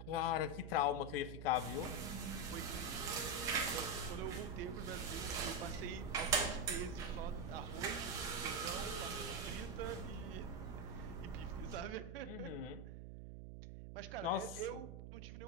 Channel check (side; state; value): right; noise; hum, 9 dB below the sound